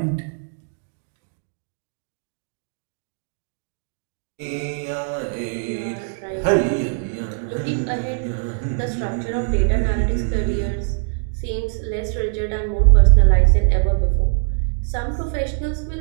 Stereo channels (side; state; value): left; silent; 64 dB below the other